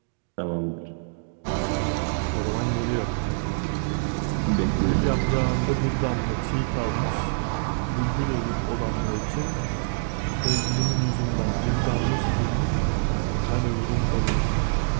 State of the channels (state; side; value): silent; left; digital silence